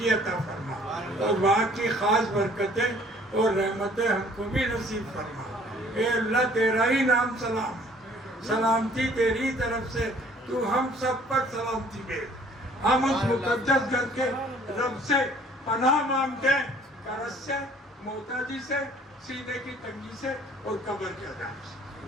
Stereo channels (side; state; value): both; normal; correlation 0.56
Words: अता फरमा, और वहाँ की खास बरकतें और रहमतें हमको भी नसीब फरमा। ए अल्लाह, तेरा ही नाम सलाम है, सलामती तेरी तरफ से, तू हम सब पर सलामती भेज। हम उस मुकद्दस घर के रब से पनाह मांगते हैं, करज से, मोहताजी से, सीने की तंगी से और कब्र के अज़ाब से।